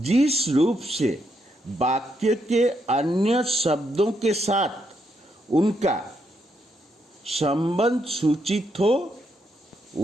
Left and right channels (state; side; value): normal; both; correlation 0.78